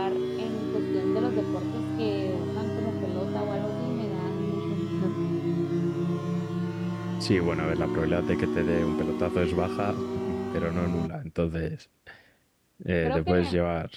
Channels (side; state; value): both; identical; correlation 1.00